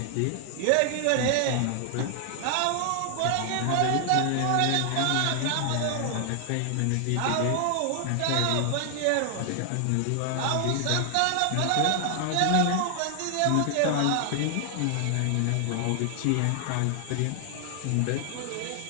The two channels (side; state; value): both; different; correlation 0.00